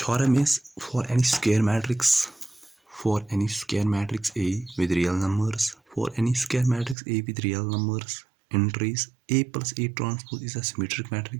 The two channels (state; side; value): drops out; left; at 7.0 s